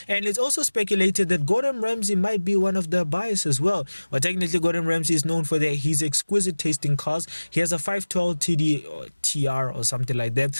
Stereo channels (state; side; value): inverted; both; correlation -1.00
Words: And it's also speculated that Gordon Ramsay might be one of the buyers as well. But technically Gordon Ramsay is known for his exquisite taste in cars. He has a 512 TD or TR or something like that.